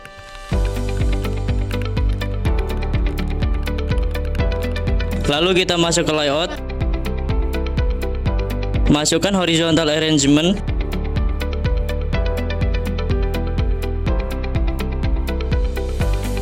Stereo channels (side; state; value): both; identical; correlation 1.00